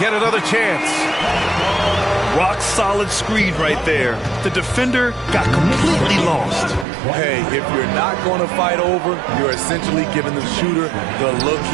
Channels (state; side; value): drops out; left; at 6.9 s